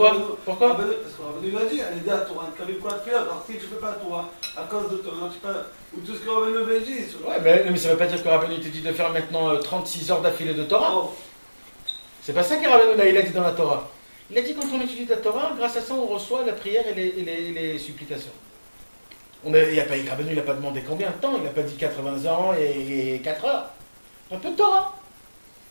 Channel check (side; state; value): both; inverted; correlation -1.00